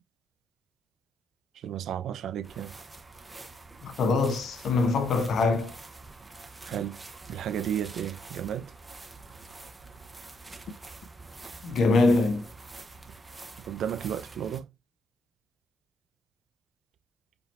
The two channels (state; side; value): normal; both; correlation 0.74